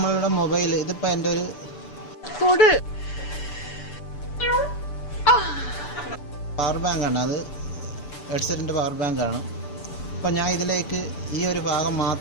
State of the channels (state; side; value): late; right; 6.9 ms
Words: മൊബൈൽ. ഇതിപ്പോൾ എൻ്റെ ഒരു പവർ ബാങ്കാണ്. അത് ഹെഡ്സെറ്റിൻ്റെ പവർ ബാങ്കാണ്. അപ്പം ഞാൻ ഇതിലേക്ക് ഈ ഒരു ഭാഗം